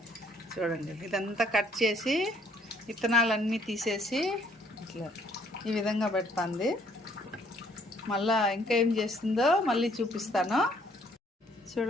చూడండి ఇదంతా కట్ చేసి విత్తనాలన్నీ తీసేసి ఇట్లా ఈ విధంగా పెడుతుంది. మళ్ళా ఇంకా ఏం చేస్తుందో మళ్ళీ చూపిస్తాను.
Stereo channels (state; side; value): normal; both; correlation 0.64